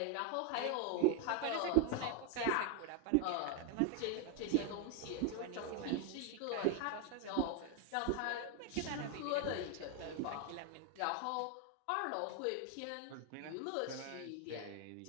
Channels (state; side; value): different; both; correlation 0.01